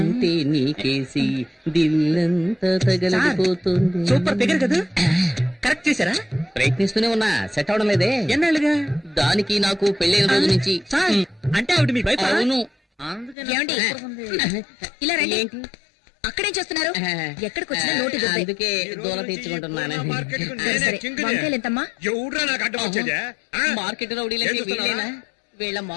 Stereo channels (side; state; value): right; drops out; at 13.4 s